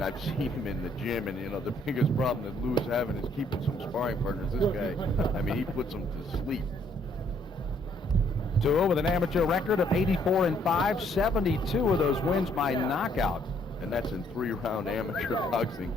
I've seen him in the gym, and, the biggest problem that Lou's having is keeping some sparring partners. This guy, I mean, he puts them to sleep. Tua with an amateur record of 84-5, 72 of those wins by knockout. And that's in 3-round amateur boxing,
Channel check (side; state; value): both; normal; correlation 0.66